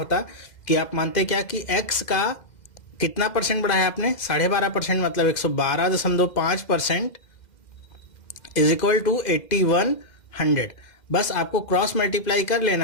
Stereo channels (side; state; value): right; late; 2.0 ms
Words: कि आप मानते क्या कि x का कितना परसेंट बढ़ाया आपने, 12.5%, मतलब 112.5% इज इक्वल टू 8100। बस आपको क्रॉस मल्टीप्लाई कर